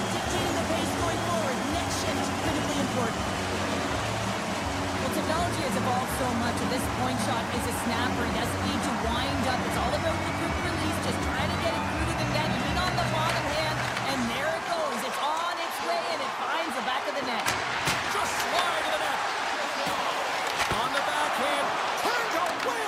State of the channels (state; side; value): identical; both; correlation 1.00